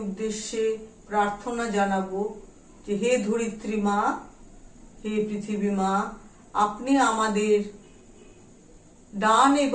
উদ্দেশ্যে প্রার্থনা জানাবো যে হে ধরিত্রী মা, হে পৃথিবী মা, আপনি আমাদের ডান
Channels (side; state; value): both; identical; correlation 1.00